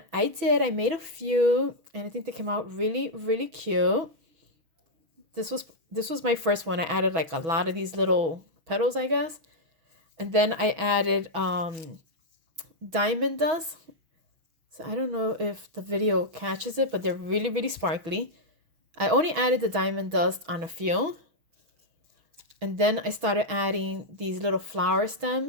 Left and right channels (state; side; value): late; left; 6.2 ms